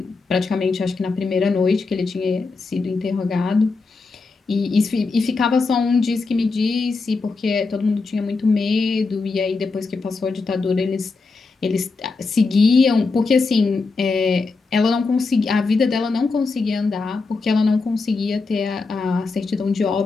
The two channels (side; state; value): right; quieter; 4.1 dB